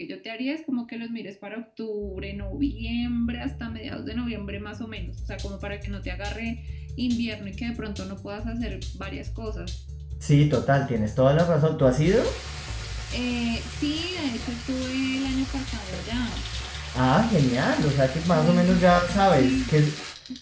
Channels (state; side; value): identical; both; correlation 1.00